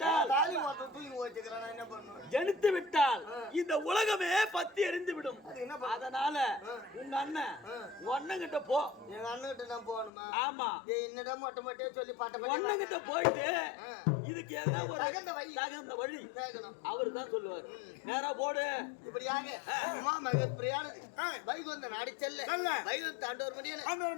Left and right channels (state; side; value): drops out; right; at 10.1 s